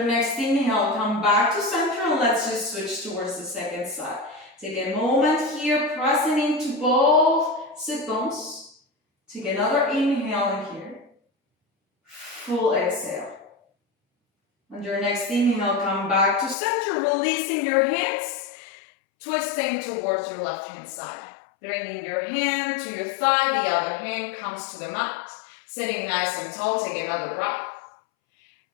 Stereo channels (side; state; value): right; drops out; at 16.6 s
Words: next inhale, come back to center and let's just switch towards the second side. Take a moment here, pressing into both sit bones. Take another inhale in here. Full exhale. On your next inhale, come back to center, releasing your hands, twisting towards your left hand side. Bringing your hand to your thigh, the other hand comes to the mat. Sitting nice and tall, take another breath.